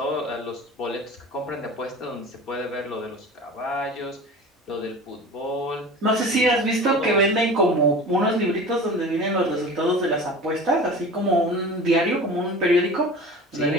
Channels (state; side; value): normal; both; correlation 0.37